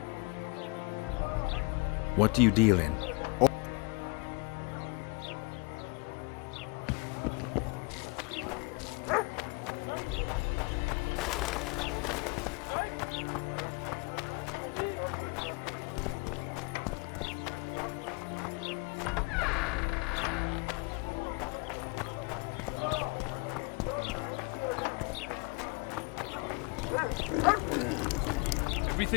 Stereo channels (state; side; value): quieter; right; 29.5 dB